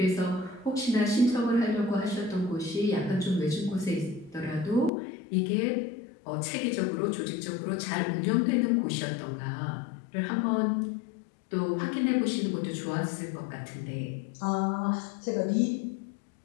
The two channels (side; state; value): right; drops out; at 4.9 s